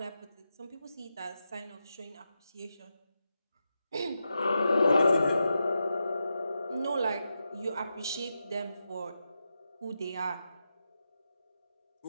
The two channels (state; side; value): inverted; both; correlation -0.88